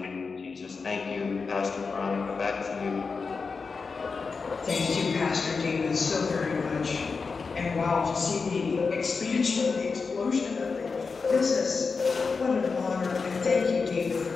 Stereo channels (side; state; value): right; quieter; 4.8 dB